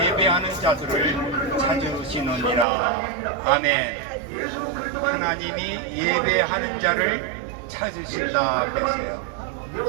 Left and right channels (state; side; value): drops out; left; at 2.7 s